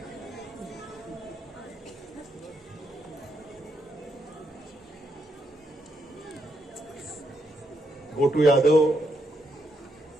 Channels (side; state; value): both; normal; correlation 0.78